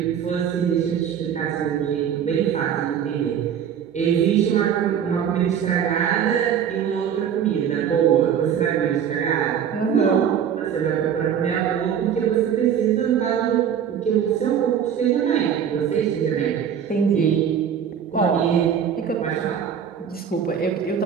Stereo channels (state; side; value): quieter; left; 8.4 dB